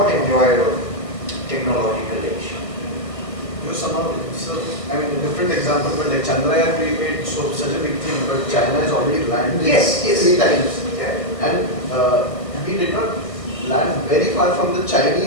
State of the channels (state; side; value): late; right; 1.5 ms